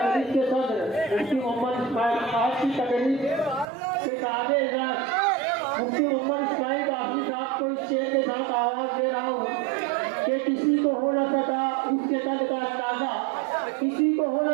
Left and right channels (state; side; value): drops out; left; at 3.7 s